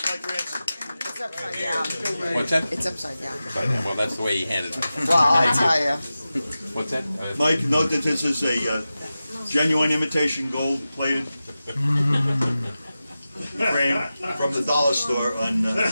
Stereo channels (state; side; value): inverted; both; correlation -0.94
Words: my grandson? It's upside down. What's that? It's upside down. Well, that's the way he handed it. Well, I'll tell you. What's that? Mike, note that this is a genuine imitation gold-plated frame from the dollar store on